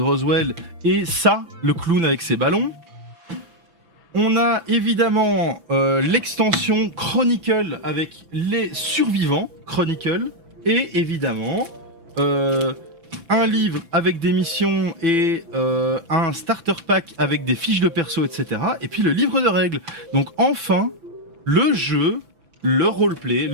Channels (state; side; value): late; left; 6.0 ms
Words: Roswell et ça, le clown avec ses ballons. On a évidemment l'extension Chronicle avec les survivants Chronicle et évidemment un livre avec des missions et un starter pack avec des fiches de perso, etc. Et puis le livre de règles. Donc enfin, le jeu, le roleplay,